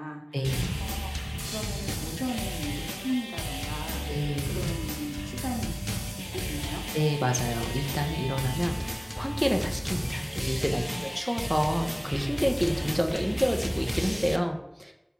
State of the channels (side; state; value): both; identical; correlation 1.00